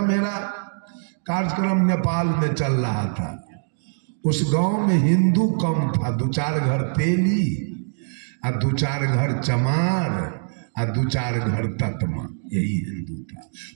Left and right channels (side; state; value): left; silent; digital silence